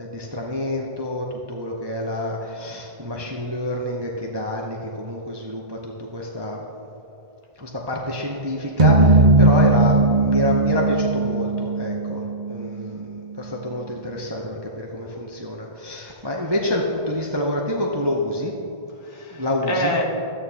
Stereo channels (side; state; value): left; late; 1.2 ms